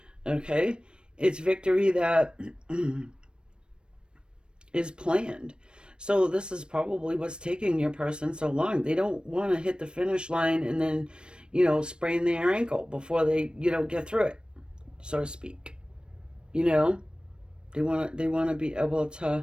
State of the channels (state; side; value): late; left; 0.054 ms